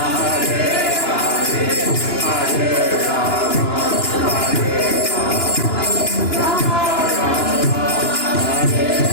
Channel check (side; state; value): right; late; 2.9 ms